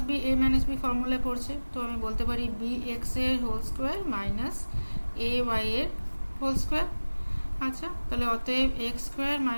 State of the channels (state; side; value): inverted; both; correlation -1.00